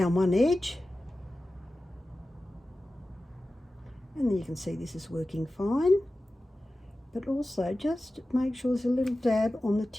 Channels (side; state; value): both; normal; correlation 0.95